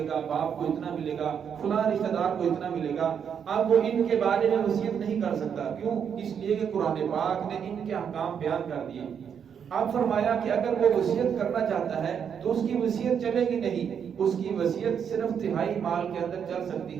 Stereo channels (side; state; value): left; quieter; 7.6 dB